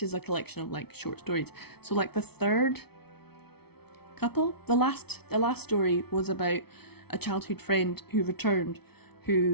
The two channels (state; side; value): late; right; 0.97 ms